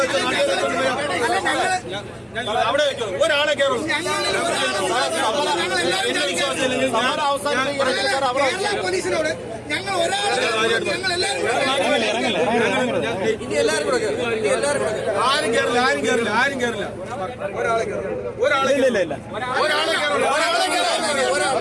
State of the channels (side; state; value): both; identical; correlation 1.00